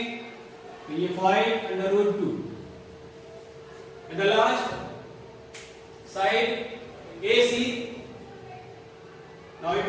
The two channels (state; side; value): identical; both; correlation 1.00